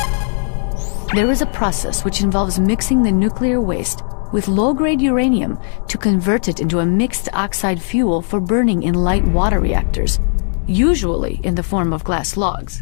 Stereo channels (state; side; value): silent; right; 66 dB below the other